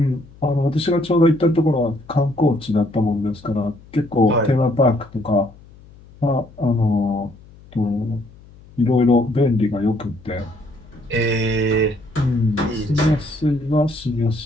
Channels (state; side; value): noise; left; hum, 23 dB below the sound